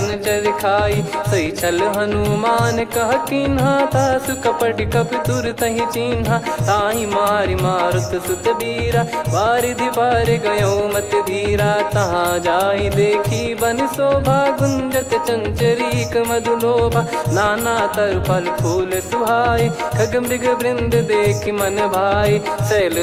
चर खाई। सही छल हनुमान कह कीन्हा, तासु कपट कप तुर तहि चिन्हा। ताहि मारि मारुत सुत बीरा, वारिधि पार गयो मत धीरा। तहाँ जाई देखी बन शोभा, गुंजत चंचरीक मधुलोभा। नाना तर फल फूल सुहाए, खग मृग वृंद देख मन भाई। शैल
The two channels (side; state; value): both; identical; correlation 1.00